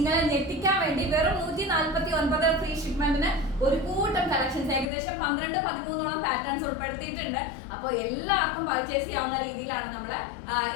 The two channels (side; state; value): right; drops out; at 4.9 s